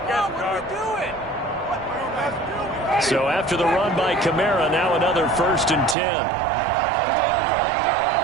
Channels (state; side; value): drops out; left; at 6.0 s